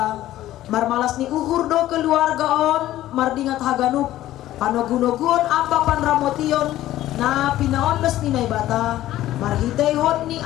Marmalas ni uhur do keluargaon mardingat haganup panogunogun apa panramotion na pinaonles ni naibata marhitay hon ni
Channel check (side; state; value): right; quieter; 14.2 dB